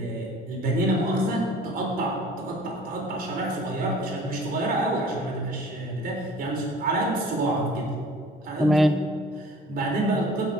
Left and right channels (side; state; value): both; normal; correlation 0.48